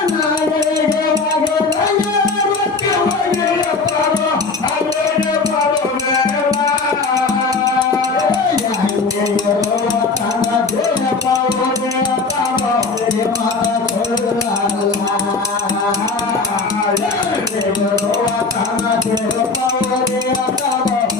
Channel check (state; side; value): quieter; right; 4.2 dB